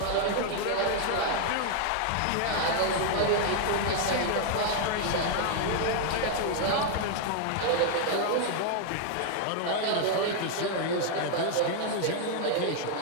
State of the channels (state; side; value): different; both; correlation 0.00